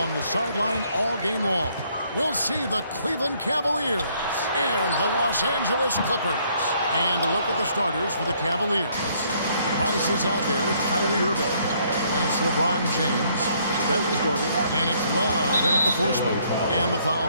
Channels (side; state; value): both; inverted; correlation -0.66